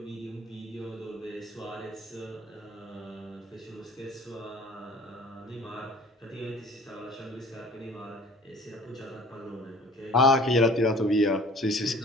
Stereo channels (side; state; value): both; normal; correlation 0.49